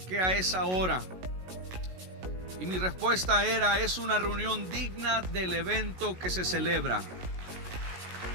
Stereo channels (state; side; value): late; left; 16 ms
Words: qué a esa hora? Y mi respuesta era: es una reunión digna del evento que se celebra.